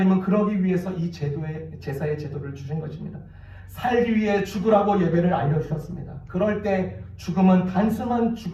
그러기 위해서 이 제사의 제도를 주신 것입니다. 살기 위해 죽으라고 예배를 알려주셨습니다. 그럴 때 죽음은 단순한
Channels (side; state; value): both; identical; correlation 1.00